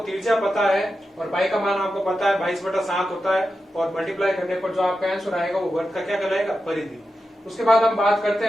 पता है और पाई का मान आपको पता है 22/7 होता है, और मल्टीप्लाई करने पर जो आपका आंसर आएगा वो वर्ग का क्या कहलाएगा? परिधि। उसके बाद हम बात करते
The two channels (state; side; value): normal; both; correlation 0.90